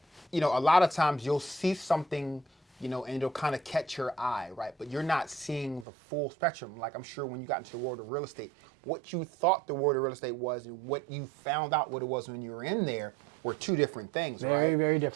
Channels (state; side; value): drops out; left; at 5.9 s